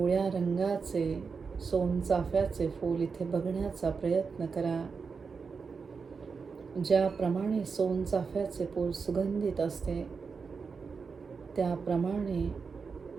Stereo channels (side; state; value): left; quieter; 5.2 dB